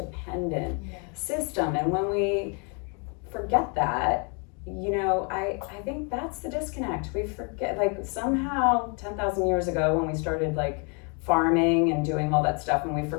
system. And when we forget that, I think that's the disconnect. We forget, like, somehow 10,000 years ago when we started like farming and doing all that stuff, and we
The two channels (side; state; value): right; quieter; 35.9 dB